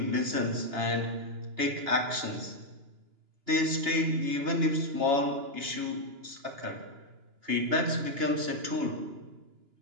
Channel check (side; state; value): left; late; 2.9 ms